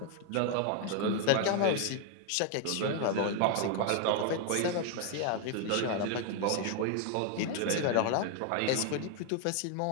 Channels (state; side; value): different; both; correlation 0.00